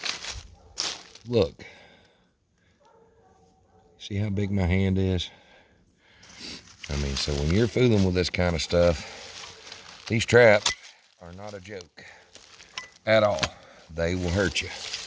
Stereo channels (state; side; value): identical; both; correlation 1.00